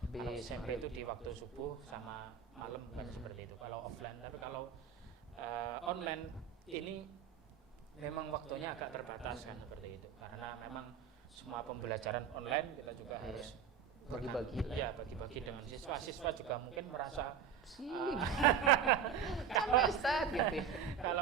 Kalau SMP itu di waktu subuh sama malam kan seperti itu kalau offline. Tapi kalau online ini memang waktunya agak terbatas kan seperti itu, karena memang semua pembelajaran online kita juga harus bagi-bagi dengan siswa juga mungkin merasa gitu.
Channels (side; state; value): left; quieter; 7.5 dB